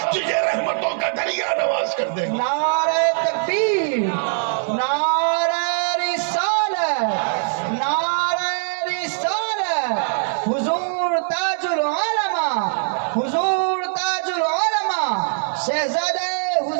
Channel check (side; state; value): left; silent; 65 dB below the other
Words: تجھے رحمتوں کا دریا نواز کر دے گا. نعرہ تکبیر، نعرہ رسالت، نعرہ رسالت. حضور تاج العلماء، حضور تاج العلماء، شہزادہ